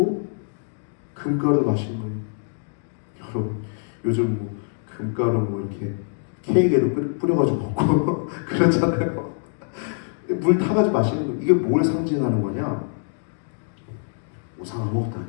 금가루 마시는 거예요. 여러분 요즘 뭐 금가루 뭐 이렇게 케이크에도 뿌려가지고 먹고 그렇잖아요. 물 타가지고 마시는 거. 이게 뭘 상징하는 거냐? 우상 아무것도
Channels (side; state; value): right; silent; digital silence